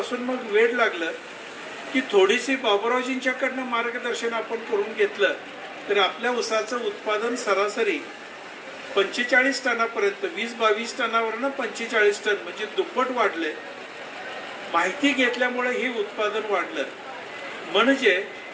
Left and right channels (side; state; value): both; identical; correlation 1.00